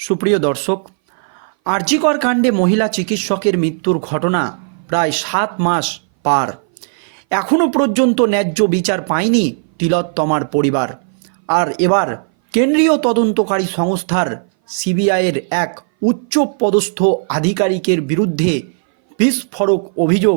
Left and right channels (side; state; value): left; silent; 60 dB below the other